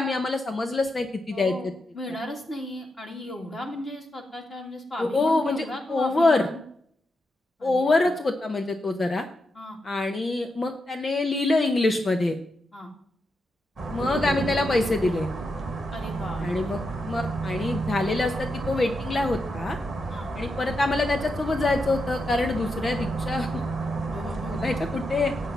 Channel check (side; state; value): both; normal; correlation 0.85